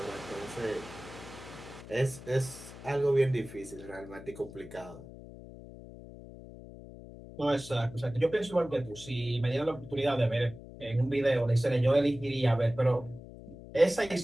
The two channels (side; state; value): left; noise; hum, 15 dB below the sound